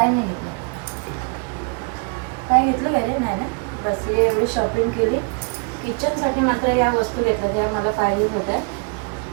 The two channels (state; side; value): quieter; left; 36.0 dB